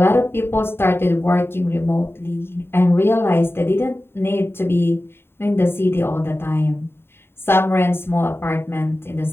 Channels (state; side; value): late; right; 0.11 ms